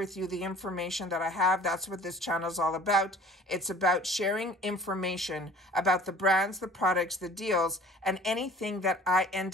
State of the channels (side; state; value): both; normal; correlation 0.49